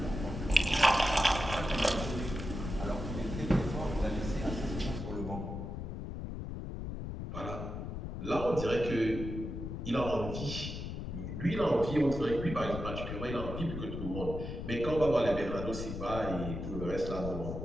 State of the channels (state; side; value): noise; left; rumble, 6 dB below the sound